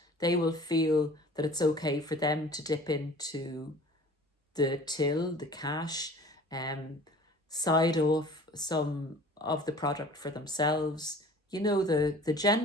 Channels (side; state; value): both; normal; correlation 0.46